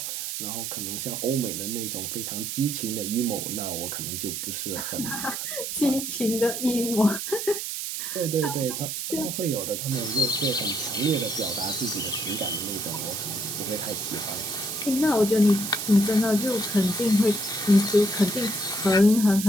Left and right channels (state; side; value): noise; right; hiss, 4 dB below the sound